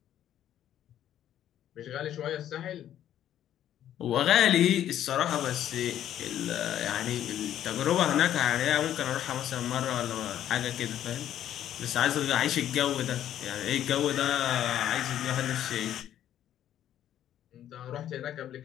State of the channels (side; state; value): right; quieter; 11.2 dB